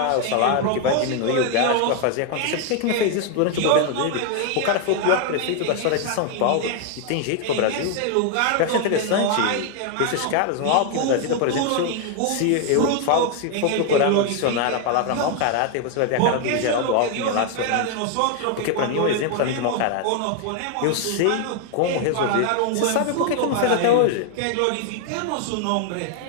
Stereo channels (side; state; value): both; different; correlation 0.00